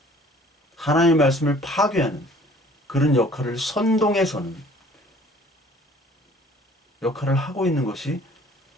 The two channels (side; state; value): both; normal; correlation 0.53